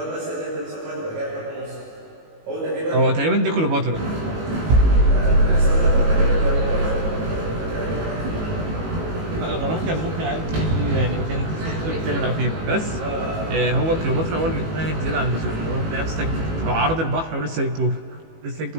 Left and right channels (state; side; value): late; left; 18 ms